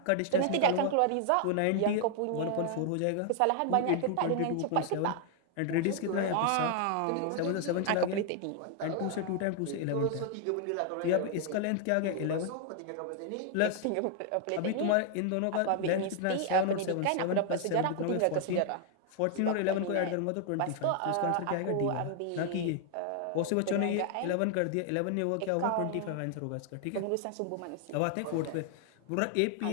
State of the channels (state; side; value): different; both; correlation 0.00